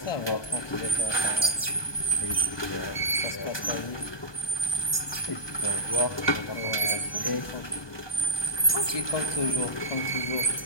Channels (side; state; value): right; late; 1.2 ms